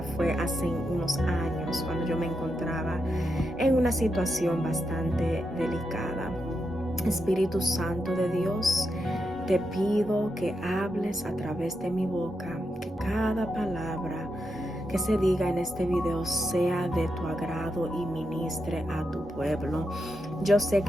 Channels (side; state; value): both; normal; correlation 0.85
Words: fue hace unos años, cuando yo me encontraba en una situación bastante delicada. Espíritu Santo de Dios, te pido que hables a través de mi boca, que cada palabra que se diga en este video sea de tu agrado y ministre a tu pueblo. Yo sé